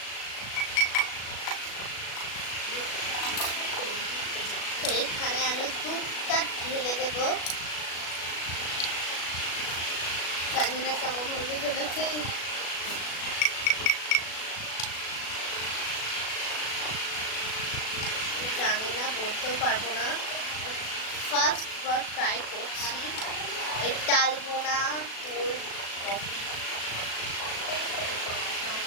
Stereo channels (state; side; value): late; right; 36 ms